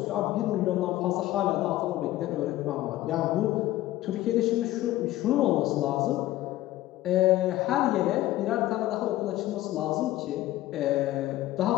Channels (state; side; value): quieter; right; 15.6 dB